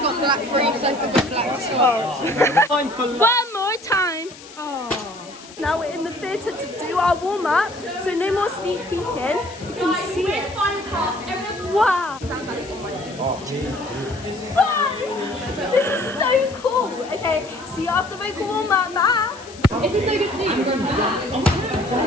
black briefs, I forgot black socks. One more time. Oh. Now we're in the theatre to do our warm up, so no more sneak peeking. You can see it. Wow. Wow. This is so cool. Okay, see you after vocal warm up now. Is it so good to see you?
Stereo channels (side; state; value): left; noise; hiss, 19 dB below the sound